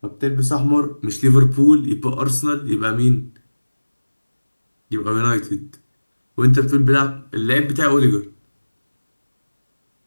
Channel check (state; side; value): inverted; both; correlation -1.00